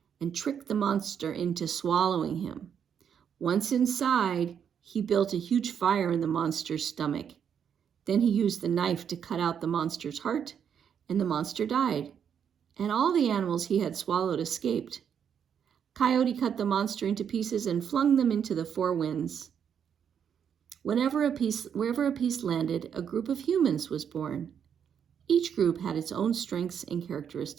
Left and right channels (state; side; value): quieter; left; 8.0 dB